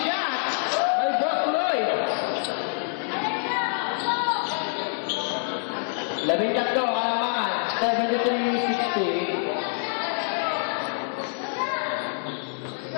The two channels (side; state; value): right; silent; 61 dB below the other